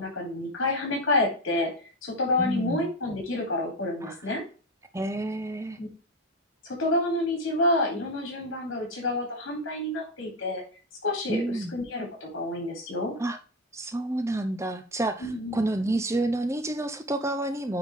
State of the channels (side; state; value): both; normal; correlation 0.18